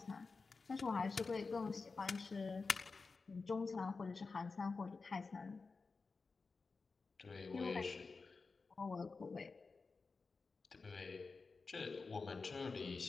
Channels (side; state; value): right; quieter; 4.3 dB